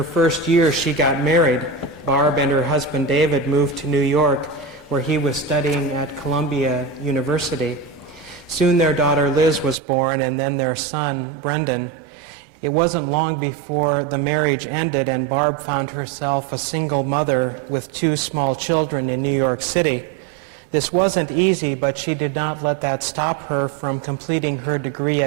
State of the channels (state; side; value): drops out; left; at 9.8 s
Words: first year, she got married. Barb and her husband David moved to New York, where he was studying at Columbia University. Soon their daughter Liz was born, and then their son Brendan. It wasn't long before the marriage ended, and Barb found herself a single mother with 2 small children in New York City. This wasn't easy, but she did not let that stop her from completing her degree